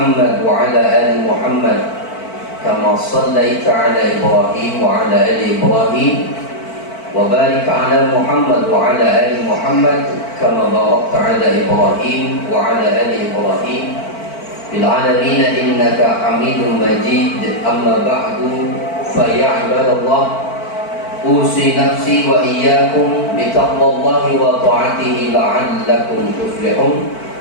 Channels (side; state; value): right; late; 4.5 ms